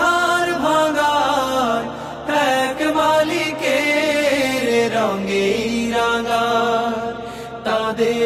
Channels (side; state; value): both; identical; correlation 1.00